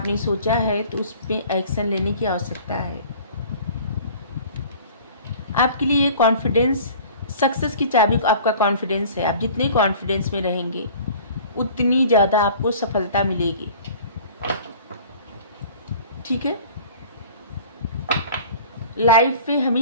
सोचा है तो उस पर एक्शन लेने की आवश्यकता है। आपके लिए कॉन्फिडेंस, सक्सेस की चाबी आपका कॉन्फिडेंस है। आप जितने कॉन्फिडेंस में रहेंगे उतनी ज़्यादा आपको सफलता मिलेगी। ठीक है, लाइफ में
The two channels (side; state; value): both; inverted; correlation -0.45